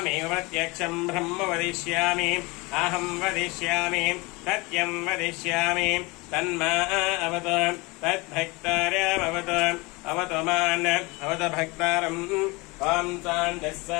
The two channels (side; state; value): right; quieter; 25.2 dB